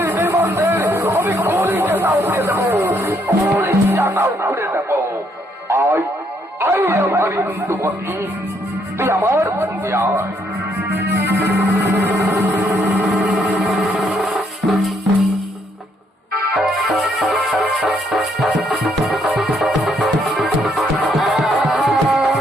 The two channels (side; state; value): both; normal; correlation 0.71